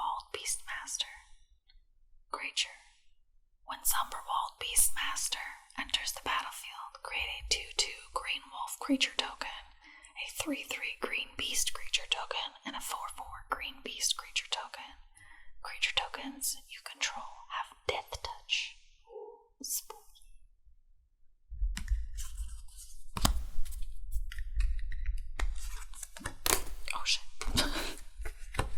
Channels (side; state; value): both; identical; correlation 1.00